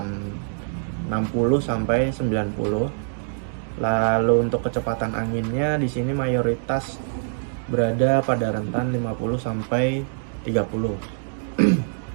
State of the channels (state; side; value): silent; left; 61 dB below the other